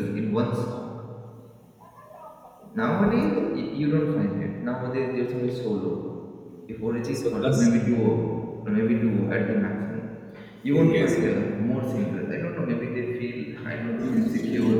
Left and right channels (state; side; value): identical; both; correlation 1.00